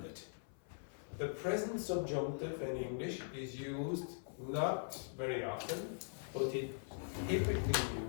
it. The present subjunctive in English is used not very often, but it's typically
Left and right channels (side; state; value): right; silent; 50 dB below the other